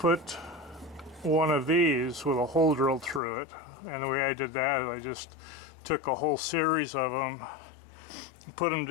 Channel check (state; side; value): drops out; right; at 3.2 s